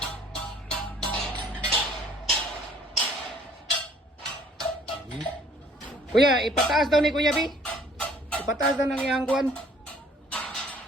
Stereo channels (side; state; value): both; normal; correlation 0.57